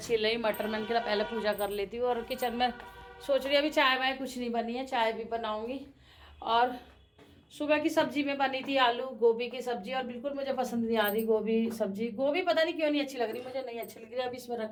रही मटर, मैंने कहा पहले पूजा कर लेती हूँ। और किचन में सोच रही अभी चाय वाय कुछ नहीं बनी है, चाय भी बनाऊँगी। और सुबह की सब्जी में बनी थी आलू गोभी की सब्जी, और बिल्कुल मुझे पसंद नहीं आ रही गोभी सब्जी, गोभी पता नहीं क्यों नहीं अच्छी लग रही, मुझे नहीं अच्छी लग रही। अब इसमें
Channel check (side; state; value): both; identical; correlation 1.00